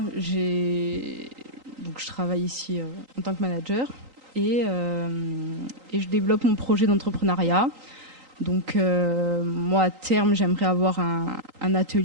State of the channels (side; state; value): left; late; 3.8 ms